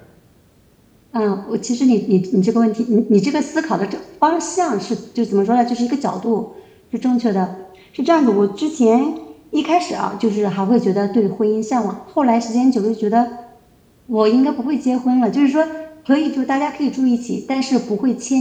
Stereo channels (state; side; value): identical; both; correlation 1.00